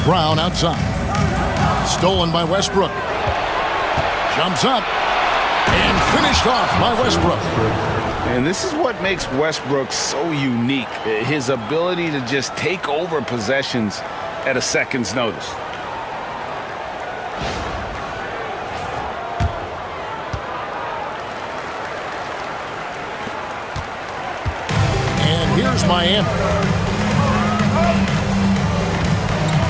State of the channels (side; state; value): both; identical; correlation 1.00